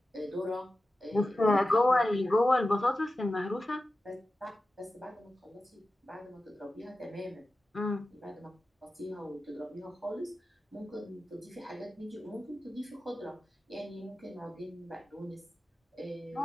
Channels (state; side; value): normal; both; correlation 0.94